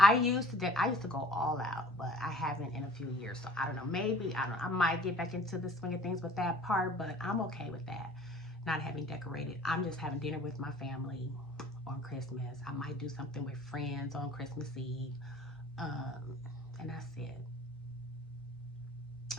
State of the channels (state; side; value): normal; both; correlation 0.50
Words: used to go all out, but I haven't in a few years. So I don't know. Maybe I might get back into the swing of things with that part, but I'm okay with that. Not having decorated. I'm just having dinner with my family on Christmas. I might do something with friends on Christmas Eve. And that's it.